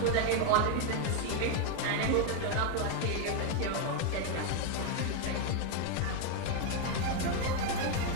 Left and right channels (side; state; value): both; different; correlation 0.01